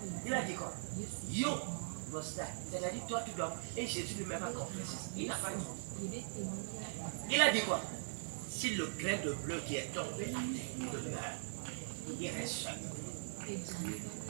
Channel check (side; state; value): left; silent; 50 dB below the other